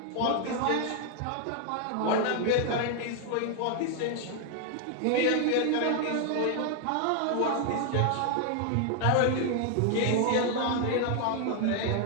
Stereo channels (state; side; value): different; both; correlation 0.00